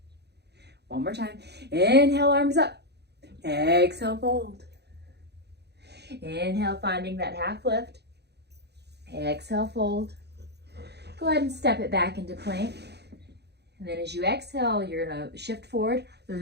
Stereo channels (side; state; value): left; late; 0.48 ms